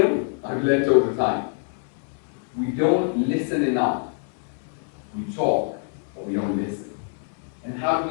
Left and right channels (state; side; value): silent; right; 61 dB below the other